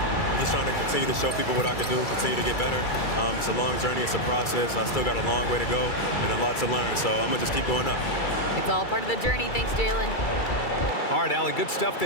just trying to continue to show people what I can do, continue to get better. It's a long journey. It's a process. I still got a long way to go and a lot to learn, so I'm going to just keep going up. It's all part of the journey. Thanks, Jaylen. All right, Allie, good stuff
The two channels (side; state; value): right; late; 2.3 ms